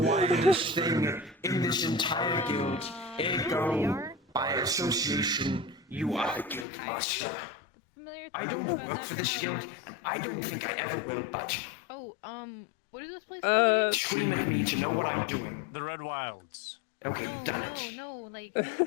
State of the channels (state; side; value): drops out; right; at 6.7 s